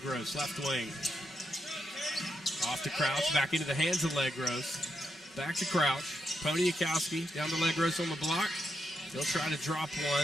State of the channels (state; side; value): normal; both; correlation 0.83